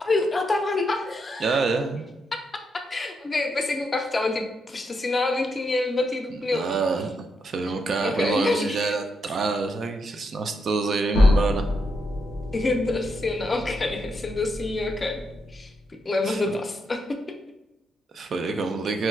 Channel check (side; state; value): both; normal; correlation 0.81